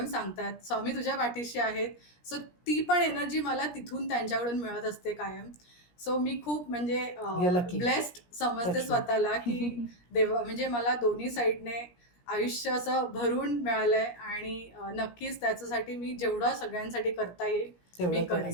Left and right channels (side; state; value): right; late; 17 ms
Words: सांगतात, "स्वामी तुझ्या पाठीशी आहेत." सो ती पण एनर्जी मला तिथून त्यांच्याकडून मिळत असते कायम. सो मी खूप म्हणजे You're lucky. ब्लेस्ड समजते Touch wood. स्वतःला, की देवा म्हणजे मला दोन्ही साइडने आयुष्य असं भरून मिळालंय आणि नक्कीच त्याच्यासाठी मी जेवढं सगळ्यांसाठी करता येईल तेवढं मी करेन.